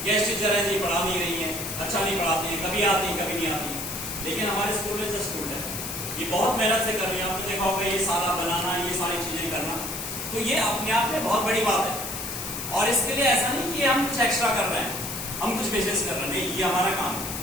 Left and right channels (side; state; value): left; noise; hiss, 6 dB below the sound